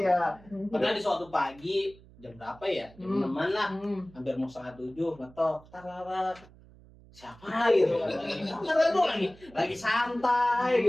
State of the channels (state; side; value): noise; right; hum, 23 dB below the sound